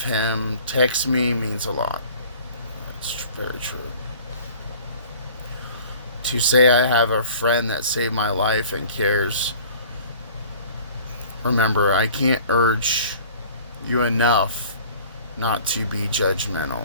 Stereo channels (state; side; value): inverted; both; correlation -0.48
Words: him text me means a lot. It's very true. To say I have a friend that saved my life and cares. Remember, I can't urge you enough not to be